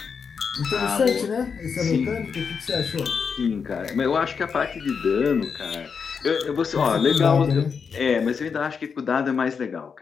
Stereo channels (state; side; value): quieter; right; 6.0 dB